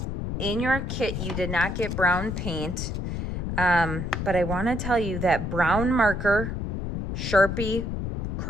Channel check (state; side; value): noise; left; rumble, 3 dB below the sound